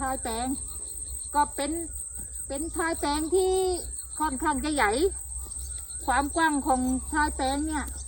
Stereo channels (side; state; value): both; identical; correlation 1.00